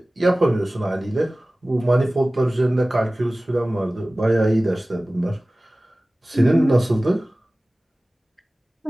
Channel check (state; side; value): normal; both; correlation 0.98